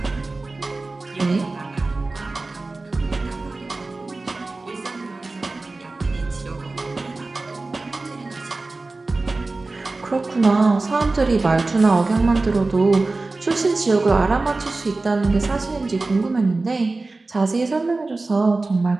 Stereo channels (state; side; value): quieter; left; 3.4 dB